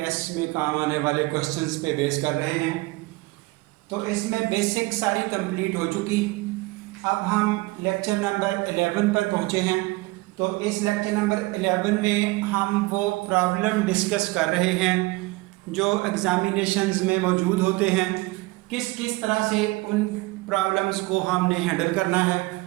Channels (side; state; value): left; quieter; 22.3 dB